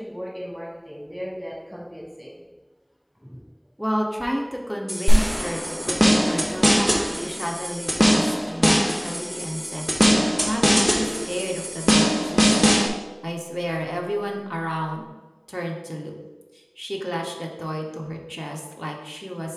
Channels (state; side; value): identical; both; correlation 1.00